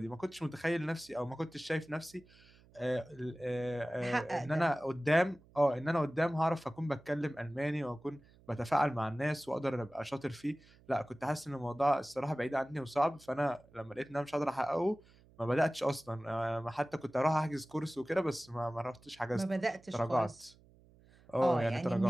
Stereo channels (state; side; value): noise; right; hum, 27 dB below the sound